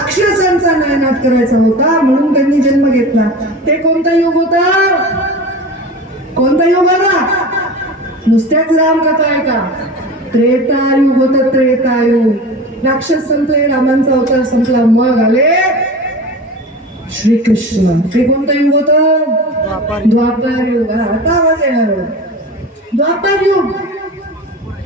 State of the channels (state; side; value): normal; both; correlation 0.33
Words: नायनाट करायचा होता, म्हणून त्यांनी जन्म घेतला. ते कोणता युग होता? कोणता युग होता? नुसत्याच रामकथा आहे का? त्रेतायुग होतं, त्रेतायुग. राक्षस संपले, रामांचा अवतार संपला, मग आले श्रीकृष्ण. ते कोणतं युग होतं? द्वापर युग. आता आवाज येणार. द्वापर युग.